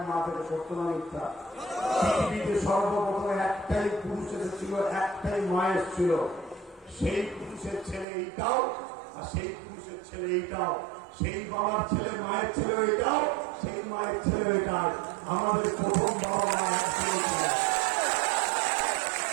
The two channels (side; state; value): left; drops out; at 8.1 s